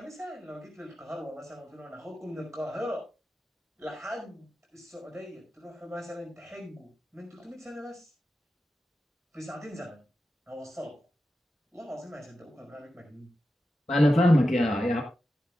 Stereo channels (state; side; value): normal; both; correlation 0.91